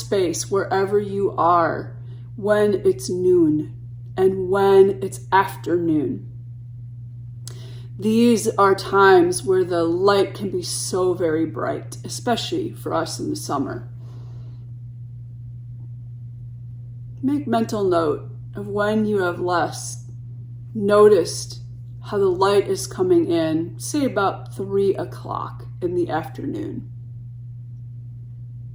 wherever you are, when it's noon and when it's afternoon. These are times where the light can be so very bright, especially for us in the summer. Make mental note of when you have last noticed how the light is coming in, say about 3 o'clock in the afternoon.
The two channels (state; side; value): identical; both; correlation 1.00